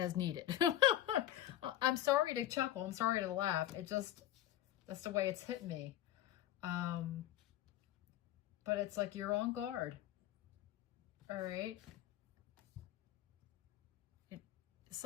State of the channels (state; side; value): quieter; right; 13.1 dB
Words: needed. I'm sorry to chuckle. I'm sorry to laugh. It just, that's the way it's hit me. But it's like you're on guard. All right.